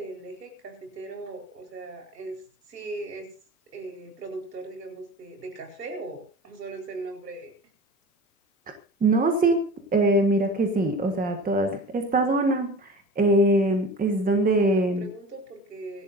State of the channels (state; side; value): normal; both; correlation 0.36